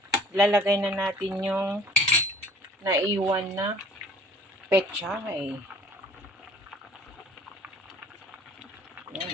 lalagay na natin yung naiwan na pechay.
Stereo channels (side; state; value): both; normal; correlation 0.51